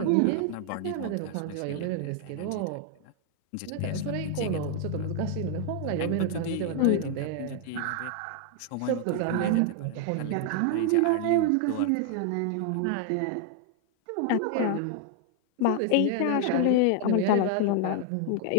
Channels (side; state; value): both; different; correlation 0.00